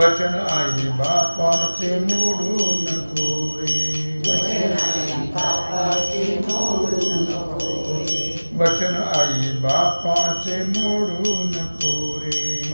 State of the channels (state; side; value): inverted; both; correlation -1.00